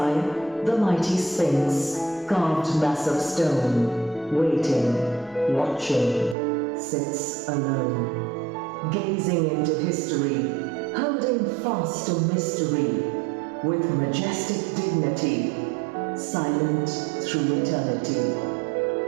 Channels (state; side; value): drops out; left; at 6.4 s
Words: The mighty Sphinx, carved mass of stone, waiting, watching, sits alone, gazing into history, holding fast to mystery, with majestic dignity, silent through eternity.